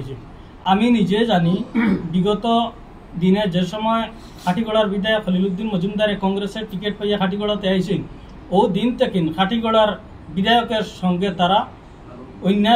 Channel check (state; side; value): identical; both; correlation 1.00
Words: আমি নিজে জানি বিগত দিনে যে সময় খাটিগড়ার বিধায়ক খলিল উদ্দিন মজুমদারে কংগ্রেসের টিকিট পাইয়া খাটিগড়াতে আইছেন, ও দিন থেকে খাটিগড়ার বিধায়কের সঙ্গে তারা